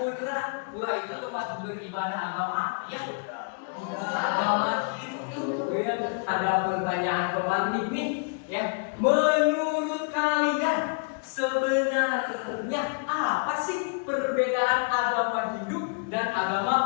pura itu tempat beribadah agama apa ya? Agama Hindu ya. Ada pertanyaan pemantik nih ya. Menurut kalian sebenarnya apa sih perbedaan agama Hindu dan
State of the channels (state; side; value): quieter; right; 38.1 dB